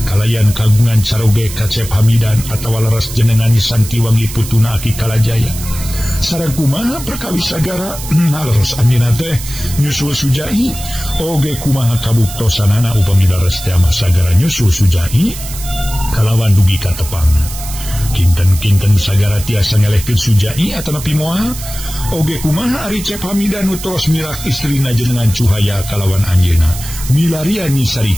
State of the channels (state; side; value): noise; right; hiss, 11 dB below the sound